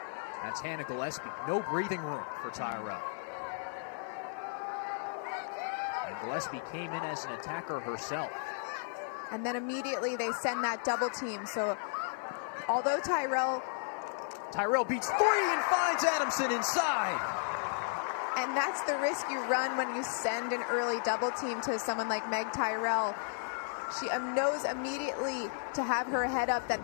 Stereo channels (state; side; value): silent; right; 55 dB below the other